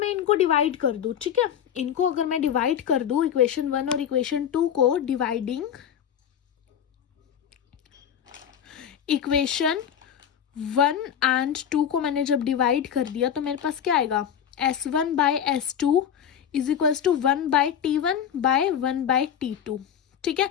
इनको डिवाइड कर दूं, ठीक है, इनको अगर मैं डिवाइड कर दूं, इक्वेशन 1 और इक्वेशन 2 को, डिवाइडिंग इक्वेशन 1 एंड 2 को मैंने जब डिवाइड कर दिया तो मेरे पास क्या आएगा? S1/S2 is equals to 1/T1/1/T2। ठीक है,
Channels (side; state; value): right; quieter; 8.8 dB